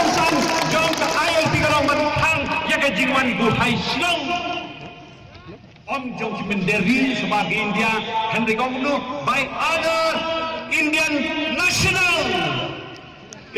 jong ka ILP kalau mentang ya ka jingwan buhai silong om jong kimenderi sebagai India Henry Kongnu by other Indian national.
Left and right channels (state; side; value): identical; both; correlation 1.00